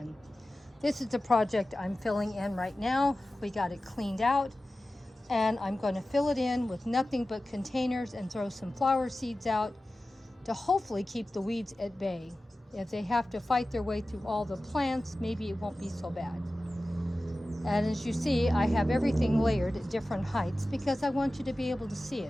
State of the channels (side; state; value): both; normal; correlation 0.95